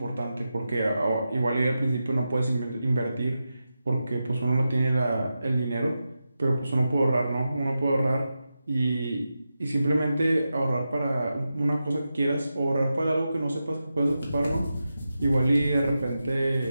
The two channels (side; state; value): both; inverted; correlation -0.90